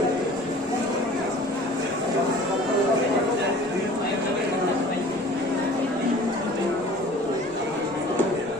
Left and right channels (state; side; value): normal; both; correlation 0.46